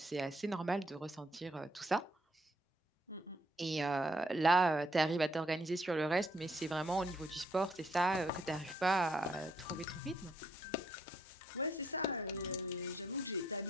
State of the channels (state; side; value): normal; both; correlation 0.71